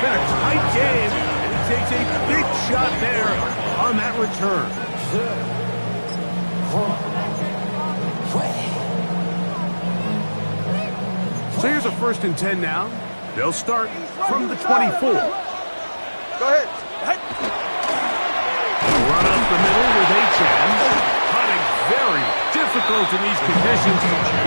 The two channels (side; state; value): both; inverted; correlation -1.00